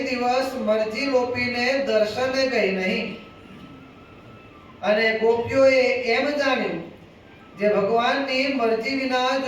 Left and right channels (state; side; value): identical; both; correlation 1.00